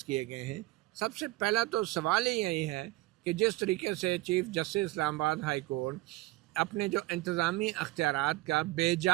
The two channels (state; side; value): quieter; left; 19.4 dB